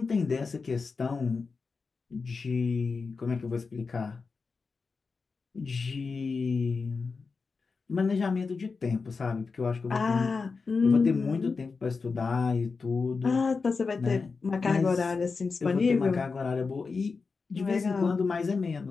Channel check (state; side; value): quieter; right; 4.6 dB